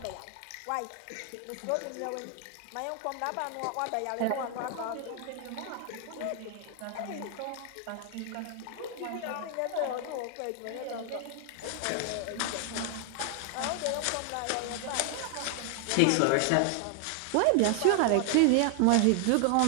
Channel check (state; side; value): different; both; correlation 0.00